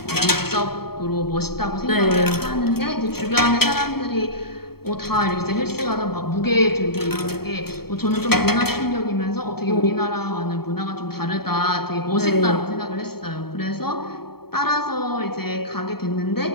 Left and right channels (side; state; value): right; late; 0.95 ms